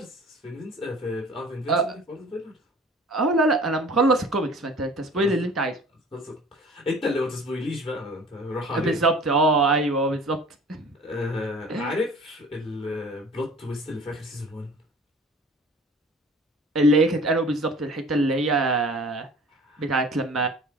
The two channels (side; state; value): both; normal; correlation 0.45